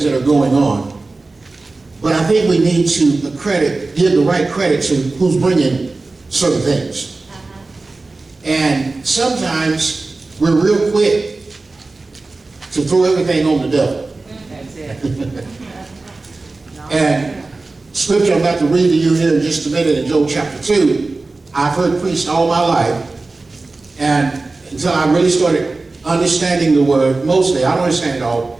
that are going on. But I think we need to give the right credit to who's bringing certain things. And sometimes we're real quick to throw everything on the devil. That's it. And scripture I'm about to read to you here in just a minute in Joel chapter 2, I've heard preached all my life, and until I really started understanding the word, mostly, I don't understand it all.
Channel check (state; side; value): quieter; left; 3.5 dB